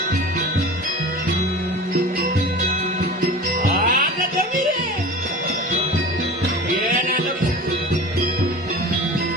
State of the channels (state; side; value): normal; both; correlation 0.35